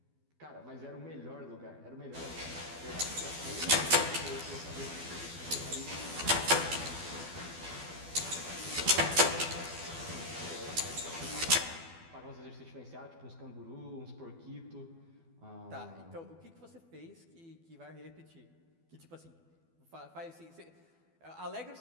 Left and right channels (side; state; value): left; late; 12 ms